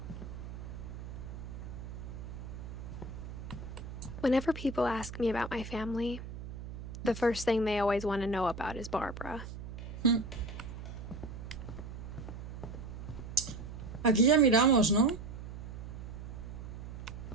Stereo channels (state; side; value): noise; right; hum, 9 dB below the sound